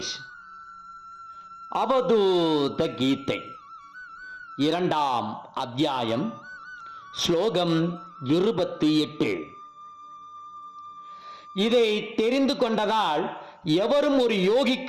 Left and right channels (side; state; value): both; identical; correlation 1.00